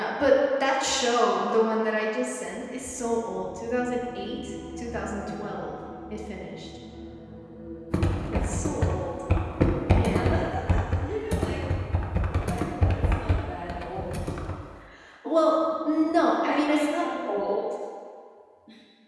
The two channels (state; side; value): identical; both; correlation 1.00